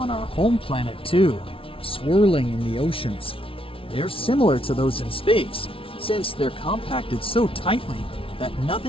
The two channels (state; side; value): late; right; 0.26 ms